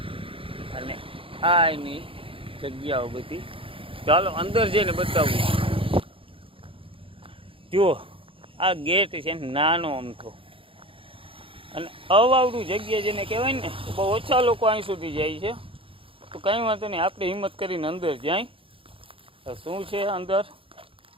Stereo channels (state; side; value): late; left; 0.26 ms